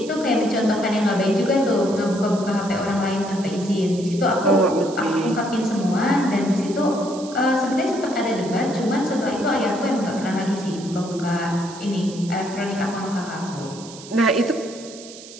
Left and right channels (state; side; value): noise; right; hiss, 16 dB below the sound